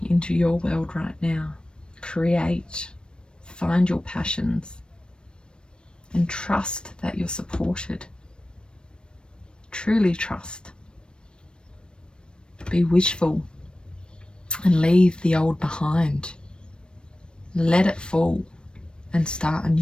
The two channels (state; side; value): late; right; 0.053 ms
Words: into your world right now. Create, find your passions, and trust that you're supported. Truly trust. Be wishful and leave the old behind. Let it fall and start